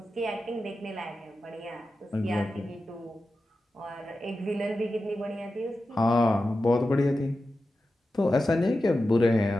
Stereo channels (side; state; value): both; normal; correlation 0.92